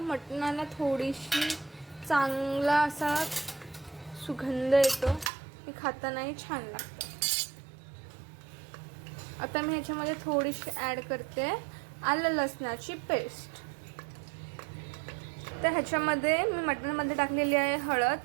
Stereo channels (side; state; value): left; drops out; at 5.3 s